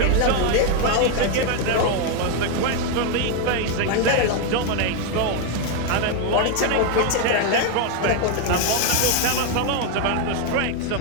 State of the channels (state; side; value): different; both; correlation 0.01